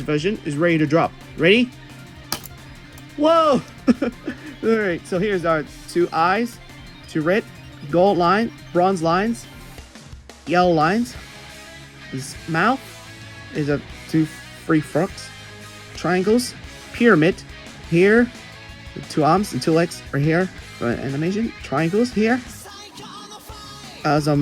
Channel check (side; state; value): both; identical; correlation 1.00